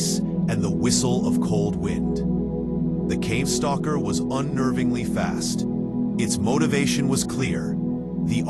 and the whistle of cold wind. The cave stalker was unnervingly fast. Its motivation was clear: the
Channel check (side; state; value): both; identical; correlation 1.00